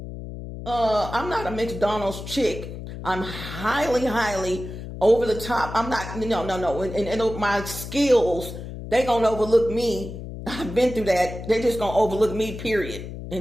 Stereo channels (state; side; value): noise; left; hum, 10 dB below the sound